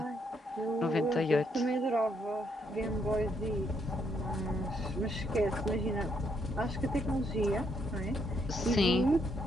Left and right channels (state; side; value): normal; both; correlation 0.74